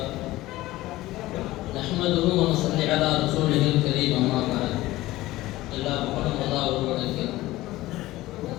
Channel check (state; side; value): quieter; right; 17.5 dB